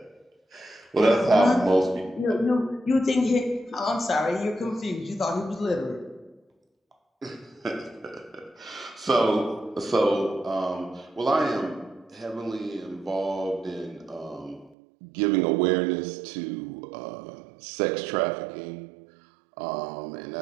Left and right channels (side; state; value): left; drops out; at 14.8 s